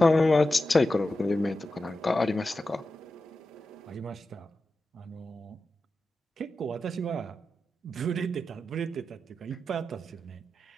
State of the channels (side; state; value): both; normal; correlation 0.91